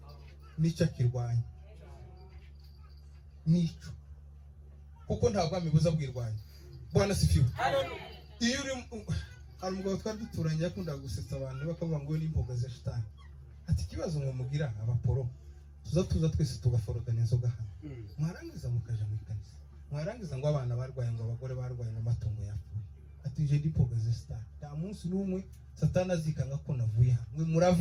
nicyo akirwanya. Nicyo, kuko nta bwami buza bwirwanya. Bwana sifiwe. Iyo uri hari umugabo twari duturanye yakundaga gusetsa abantu bakavuga ngo we n'imboga za shitani. Ati ikibazo ngo mugira abaporo tuza twese tugaforogana inzoga hano, mwarangiza mukaja mu kanisa, mwarangiza ngo abana barwaye, ngo abagore barwaye, ngo amatungo yapfuye. Ati je ndipoga za shitani. Nta munsi n'umwe satani azikanga ko navuye hano, mwe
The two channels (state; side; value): identical; both; correlation 1.00